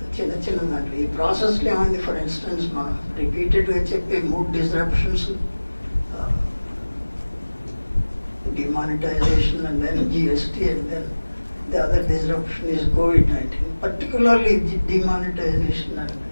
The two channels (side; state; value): both; inverted; correlation -1.00